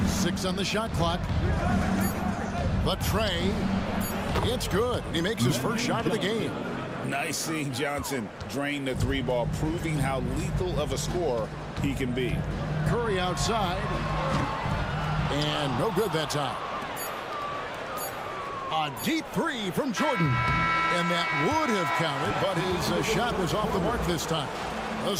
6 on the shot clock. The tray. It's good. He makes his first shot of the game. Nice seeing Johnson drain the 3-ball, proving how lethal of a scorer he can be. Curry outside. And no good that time. A deep 3 from Jordan. And that would have counted, but his shot was off the mark this time. The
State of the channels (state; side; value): identical; both; correlation 1.00